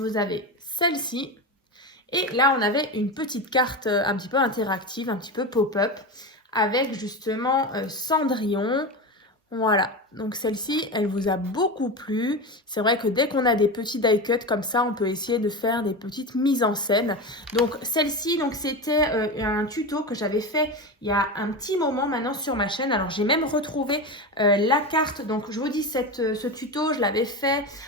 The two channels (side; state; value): both; normal; correlation 0.21